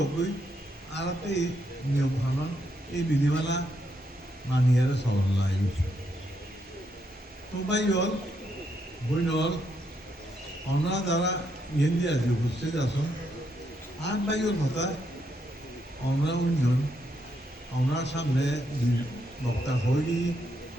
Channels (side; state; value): both; normal; correlation 0.78